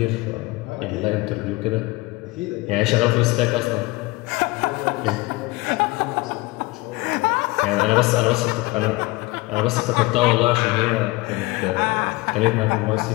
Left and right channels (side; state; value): right; quieter; 21.9 dB